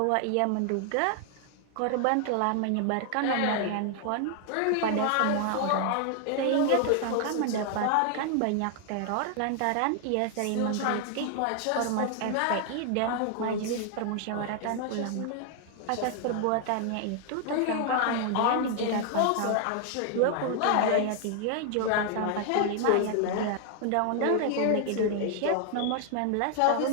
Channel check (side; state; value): both; different; correlation 0.00